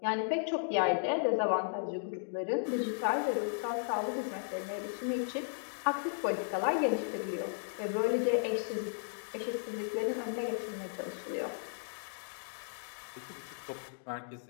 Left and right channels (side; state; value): right; silent; digital silence